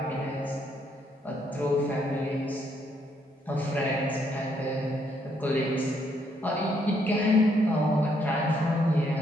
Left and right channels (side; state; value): both; normal; correlation 0.72